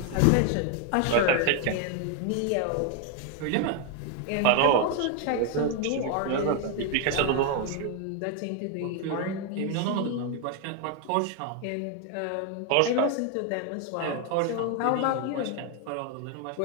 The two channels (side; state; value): both; different; correlation 0.01